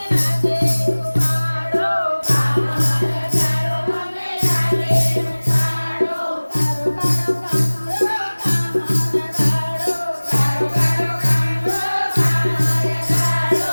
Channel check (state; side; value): inverted; both; correlation -1.00